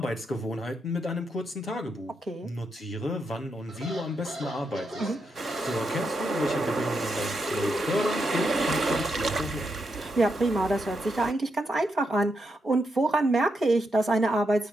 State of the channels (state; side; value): normal; both; correlation 0.83